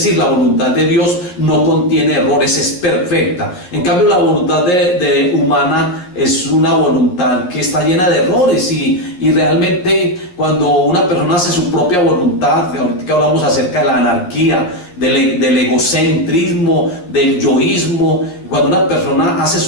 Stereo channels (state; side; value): late; right; 11 ms